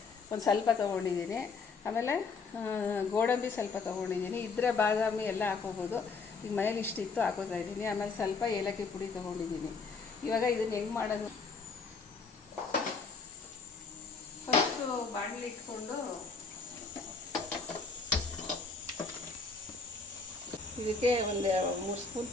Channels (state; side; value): quieter; right; 4.5 dB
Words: ಒಂದು ಸ್ವಲ್ಪ ತೊಗೊಂಡಿದ್ದೀನಿ. ಆಮೇಲೆ ಗೋಡಂಬಿ ಸ್ವಲ್ಪ ತೊಗೊಂಡಿದ್ದೀನಿ. ಇದ್ರೆ ಬಾದಾಮಿ ಎಲ್ಲ ಹಾಕೋಬೋದು. ಈಗ ಮನೇಲಿ ಇಷ್ಟಿತ್ತು ಹಾಕೋತಾ ಇದ್ದೀನಿ. ಆಮೇಲೆ ಸ್ವಲ್ಪ ಏಲಕ್ಕಿ ಪುಡಿ ತೊಗೊಂಡಿದ್ದೀನಿ. ಇವಾಗ ಇದನ್ನು ಹೆಂಗೆ ಮಾಡೋದು, ಫಸ್ಟು ಬಾಣಲಿ ಇಟ್ಕೊಂಡು ಇದಕ್ಕೆ ಒಂದು 3 ಸ್ಪೂನ್